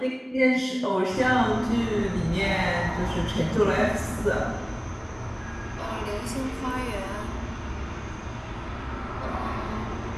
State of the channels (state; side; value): identical; both; correlation 1.00